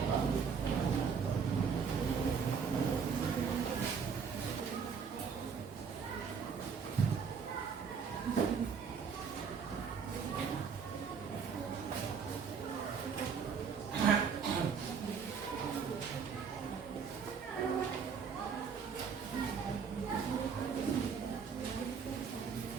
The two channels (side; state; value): left; quieter; 6.2 dB